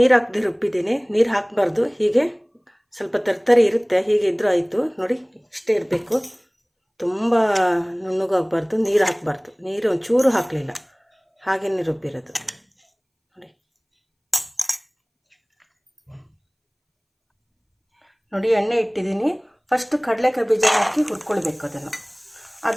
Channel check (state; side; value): identical; both; correlation 1.00